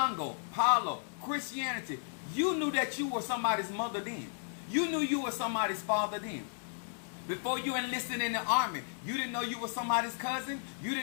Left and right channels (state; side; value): silent; right; digital silence